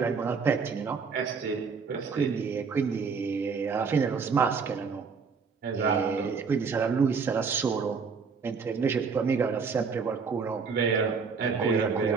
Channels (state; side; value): quieter; left; 5.4 dB